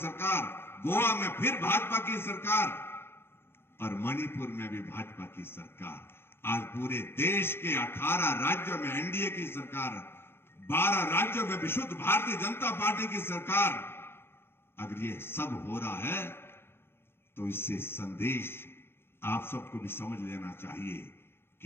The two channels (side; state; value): right; late; 0.11 ms